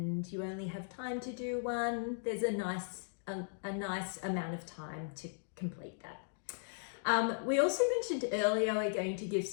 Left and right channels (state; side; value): silent; right; digital silence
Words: you only have time to do one, there's a nice amount of time to complete that. We also mentioned earlier we're going to give